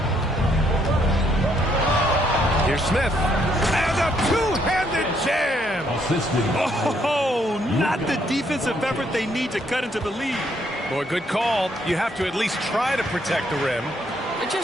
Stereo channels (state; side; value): normal; both; correlation 0.71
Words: Here's Smith. And a two-handed jam. Oh, not the defensive effort they need to cut into the lead. Boy, good call. You have to at least try to protect the rim. They're